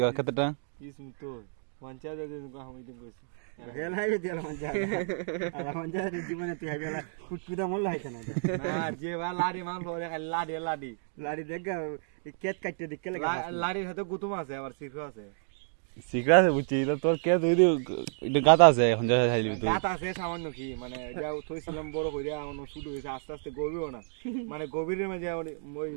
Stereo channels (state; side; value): silent; left; digital silence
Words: কতটা ইস তো পঞ্চায়েত আমি দিন কইছি রেলাই দিল মঞ্জা জীবনে তুই বেলা কুটকুদা মল লাইছ না না যে বা লাড়ি মান লরে লাড়ি লাড়ি লাড়ি দেখ কেত কাটতে দিকে লাড়ির সাথে গুতুম আছে আবার সিফা আছে সিকরা আছে বুঝছি তো তোর কে তুই এটা গাতা আছে এখন যা খাইলি তুই গাত আছে সামান্য কি মানে যা থইছিলাম বড় কইরা অন্য শুরু হইছে আস্তে আস্তে গভীরও না মানে গভীরের মাঝে ওই